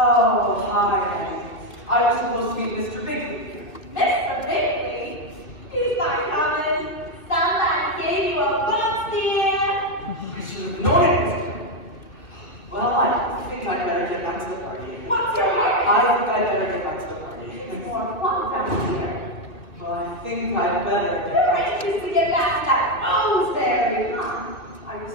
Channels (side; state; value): right; late; 2.8 ms